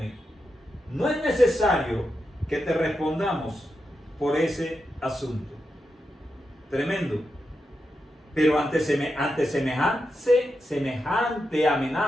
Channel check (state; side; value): normal; both; correlation 0.87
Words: No es necesario que te respondamos por ese asunto. Tremendo. Pero ante semejante